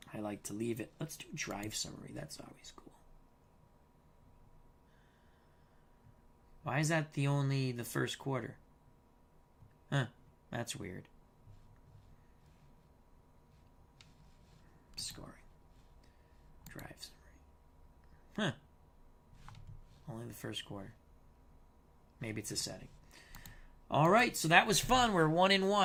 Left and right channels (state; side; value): identical; both; correlation 1.00